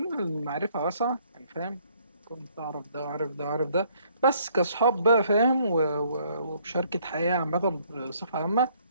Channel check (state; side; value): inverted; both; correlation -0.64